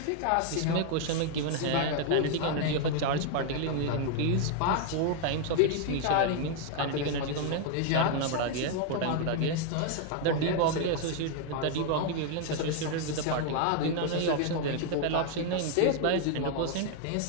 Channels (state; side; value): different; both; correlation 0.00